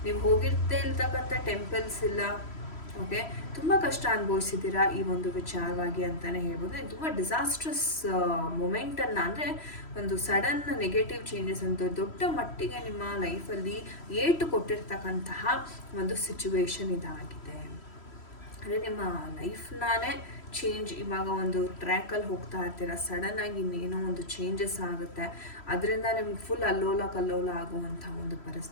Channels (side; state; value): right; late; 3.1 ms